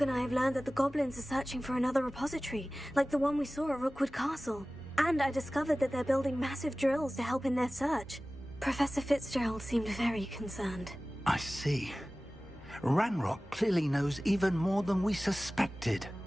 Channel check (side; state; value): both; normal; correlation 0.97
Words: and I have learned that the goblins are searching for another repository, like the one we saw at Rookwood Castle. And I discovered that they're building massive drills to help in their search. Professor Fitzgerald seemed very concerned. I see. Ranrock clearly knows even more than we suspected.